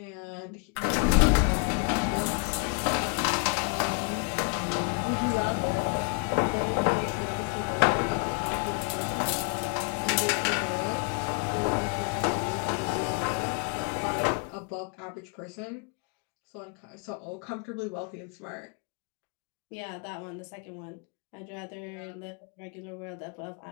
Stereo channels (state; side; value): quieter; right; 35.0 dB